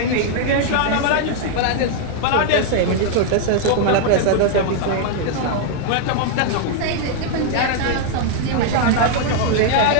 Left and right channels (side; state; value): both; different; correlation 0.00